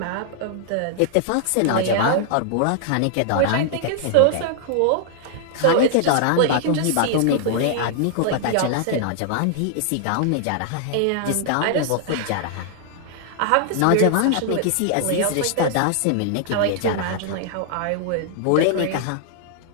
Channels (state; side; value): different; both; correlation -0.01